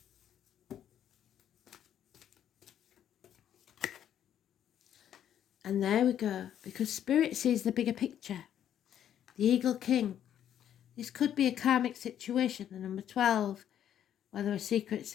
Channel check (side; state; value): right; quieter; 10.1 dB